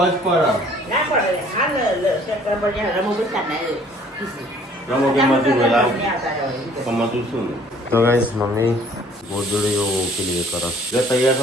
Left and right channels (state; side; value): normal; both; correlation 0.57